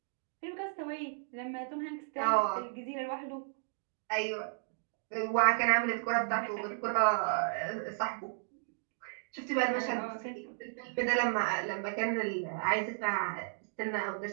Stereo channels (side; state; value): left; silent; digital silence